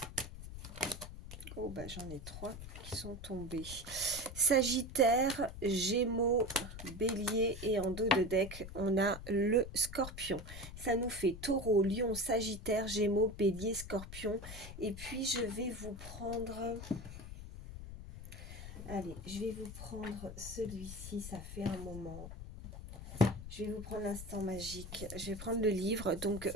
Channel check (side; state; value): left; noise; rumble, 11 dB below the sound